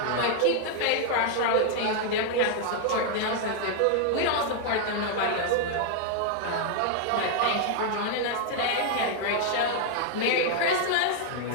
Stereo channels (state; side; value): different; both; correlation 0.00